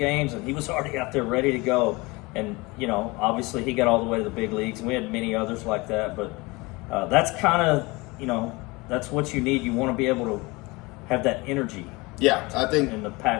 and he was already out there ready to go. And, obviously he got all the way to the big leagues, and we had many others like that. But that's kind of, that's what you need. You want to be able to have that energy. Yeah, I think, and the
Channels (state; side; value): quieter; right; 24.2 dB